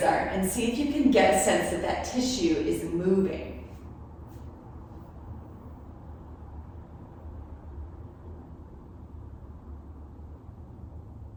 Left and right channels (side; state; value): both; identical; correlation 1.00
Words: are, and see if you can get a sense that that tissue is moving.